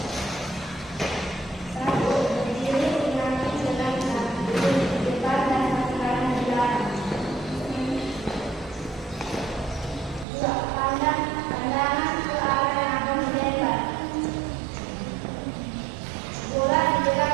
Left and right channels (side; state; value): left; drops out; at 10.2 s